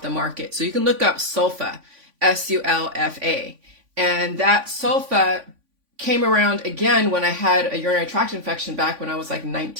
the market. So you can look up sulfa, S-U-L-F-A. And that sulfa came around again when I had a urinary tract infection back when I was like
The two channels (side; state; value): left; late; 3.5 ms